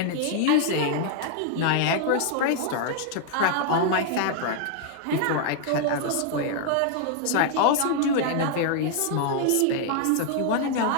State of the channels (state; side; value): different; both; correlation 0.00